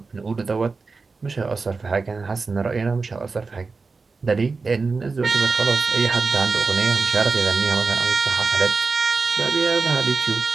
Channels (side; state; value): left; quieter; 4.3 dB